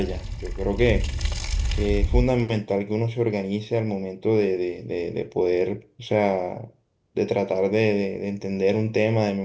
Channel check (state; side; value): identical; both; correlation 1.00